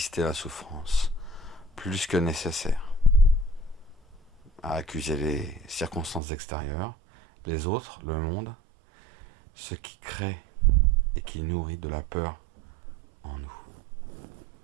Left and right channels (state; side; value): drops out; left; at 6.2 s